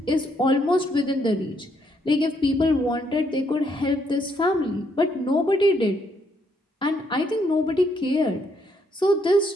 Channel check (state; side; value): normal; both; correlation 0.73